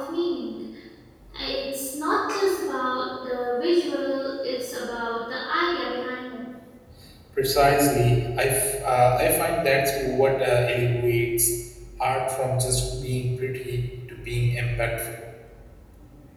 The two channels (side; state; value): both; identical; correlation 1.00